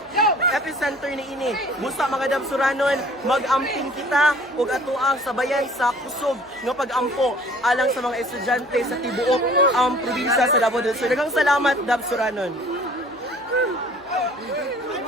epicenter ni ini. Busa mga dab Suranon, mag-amping kita ug atuang sabayan sa kusog nga pag-ampo alang sa mga estudyante sa tibuok ang probinsya sa Davao del Sur. Daghang salamat dab Suranon.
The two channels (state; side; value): noise; right; hum, 29 dB below the sound